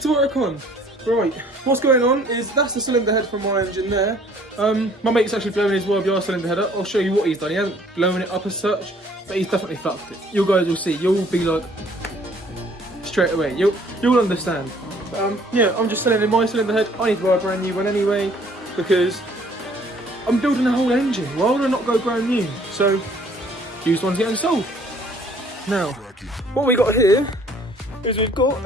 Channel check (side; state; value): both; normal; correlation 0.58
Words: work on. Right, what's going on is that's the cylinder head from my engine there. My mate's actually blowing his YBR cylinder head up. I'll show you what he's done. He hasn't blown it up as such, but he's definitely fucked it. You guys will see. You'll be like straight away. You'll understand. Yeah, I'm just selling in my cylinder head. I need to buy a brand new one anyway because I'm building a whole engine. Why would I not go brand new? So used one's getting sold. Now, what we got here is we've got